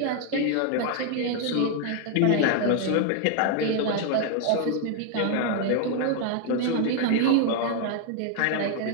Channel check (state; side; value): different; both; correlation 0.00